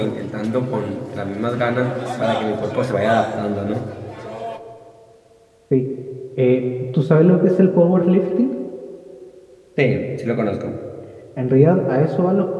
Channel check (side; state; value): both; identical; correlation 1.00